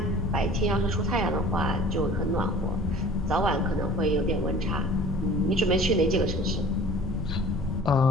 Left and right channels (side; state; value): both; normal; correlation 0.45